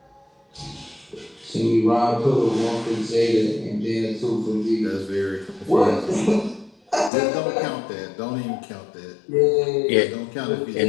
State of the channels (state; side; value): drops out; right; at 7.1 s